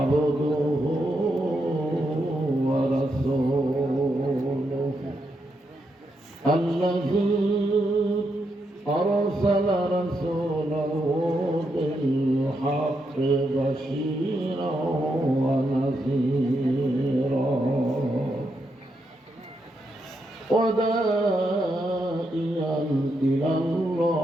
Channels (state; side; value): normal; both; correlation 0.82